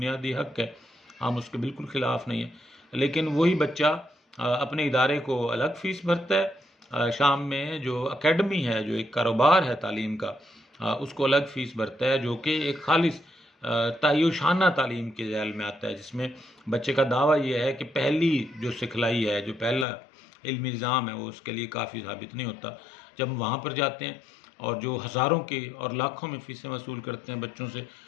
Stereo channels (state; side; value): drops out; right; at 19.9 s